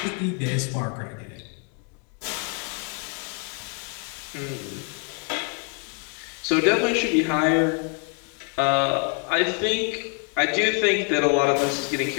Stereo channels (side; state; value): right; quieter; 36.2 dB